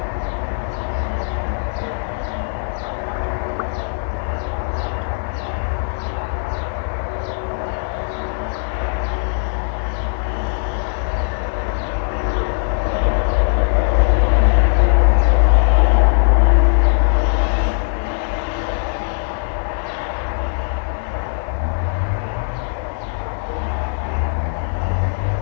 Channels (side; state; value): right; silent; digital silence